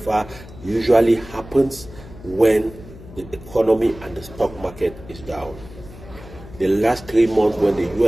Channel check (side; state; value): left; noise; hum, 17 dB below the sound